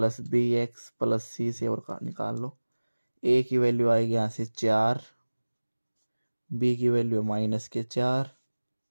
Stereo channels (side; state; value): both; inverted; correlation -1.00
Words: bx plus c से और निकाल लो। a की वैल्यू आएगी यहाँ से 4, b की वैल्यू -4